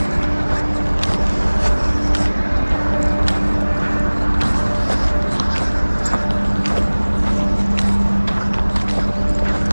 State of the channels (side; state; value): both; inverted; correlation -1.00